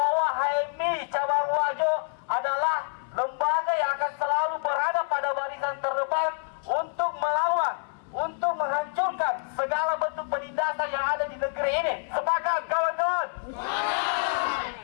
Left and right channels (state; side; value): silent; right; 60 dB below the other